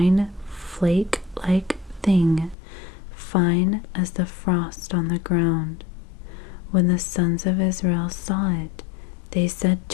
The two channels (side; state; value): right; drops out; at 2.6 s